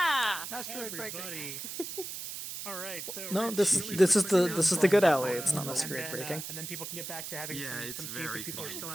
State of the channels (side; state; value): right; noise; hiss, 8 dB below the sound